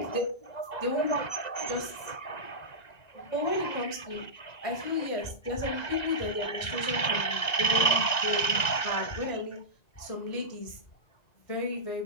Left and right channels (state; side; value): late; right; 2.0 ms